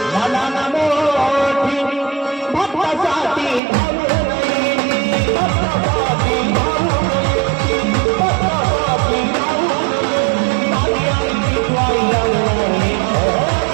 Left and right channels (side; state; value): left; drops out; at 3.6 s